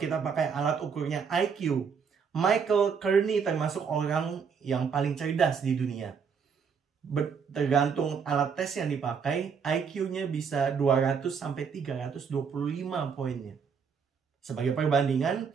pakai alat ukurnya IQ, Michael Kearney termasuk orang yang paling cerdas di dunia. Tergantung alat tes yang dipakai, IQ-nya bisa 200 sampai 325 poinnya. Sebagai perbandingan,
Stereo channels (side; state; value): left; quieter; 6.3 dB